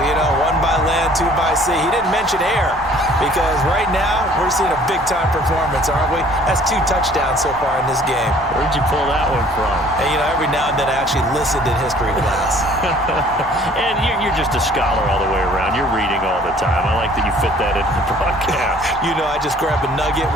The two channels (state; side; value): normal; both; correlation 0.55